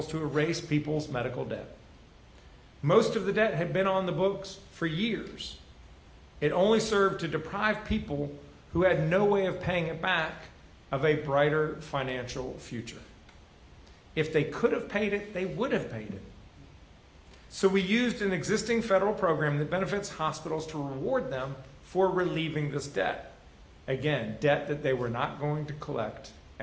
to erase people's medical debt. Most of the debt had been on the books for years. It only served to deprive people who had no way of paying it back of a brighter financial future. If they could have paid it, they would have paid it. So we used an existing federal program that benefits hospitals to reward them for relieving this debt. Again, debt that they were not going to collect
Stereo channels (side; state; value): both; identical; correlation 1.00